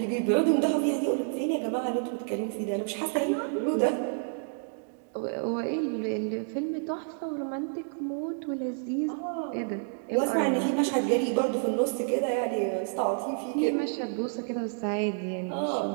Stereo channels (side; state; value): left; silent; digital silence